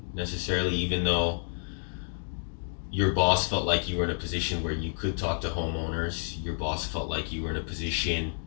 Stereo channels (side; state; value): right; silent; digital silence